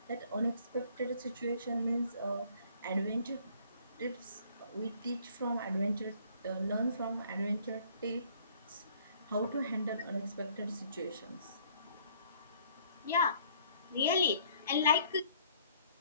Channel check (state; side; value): inverted; both; correlation -0.59